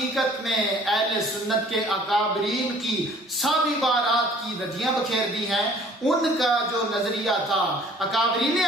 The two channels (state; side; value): normal; both; correlation 0.53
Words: میں اہل سنت کے اکابرین کی سب عبارات کی ردیاں بکھیر دی ہیں. ان کا جو نظریہ تھا، اکابرین